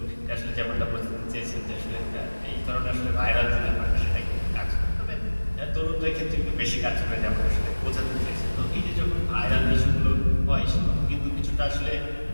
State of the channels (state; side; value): inverted; both; correlation -1.00